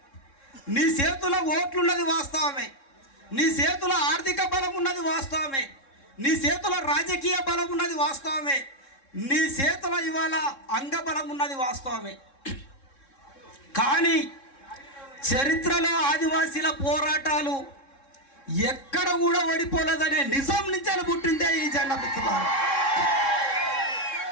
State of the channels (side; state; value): right; late; 3.7 ms